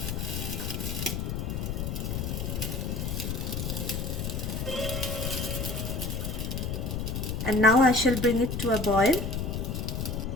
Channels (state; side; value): noise; left; rumble, 2 dB below the sound